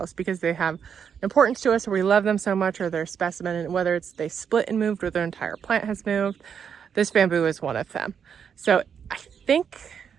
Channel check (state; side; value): quieter; left; 7.4 dB